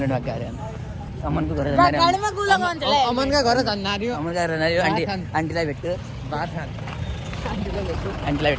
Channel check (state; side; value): identical; both; correlation 1.00